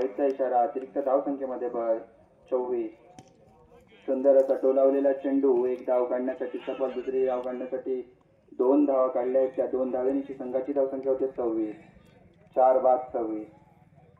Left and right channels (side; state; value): both; identical; correlation 1.00